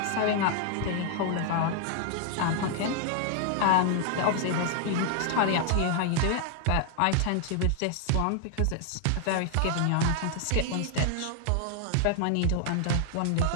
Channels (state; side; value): different; both; correlation 0.00